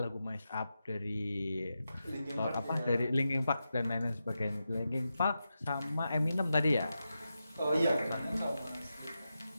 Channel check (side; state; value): both; inverted; correlation -0.89